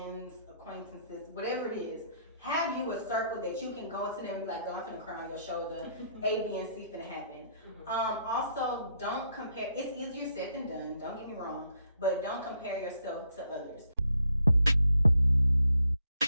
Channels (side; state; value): both; inverted; correlation -0.72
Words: acquaintances, whatever it is. Have you a circle that you can go into them and be like, "Oh, I'm finna cry on your shoulder. A, B, and C finna happen." Also, don't compare. It's easier said than done. Don't get me wrong, but don't compare yourself to others.